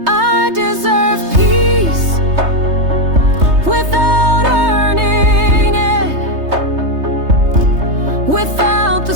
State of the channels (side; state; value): left; late; 3.3 ms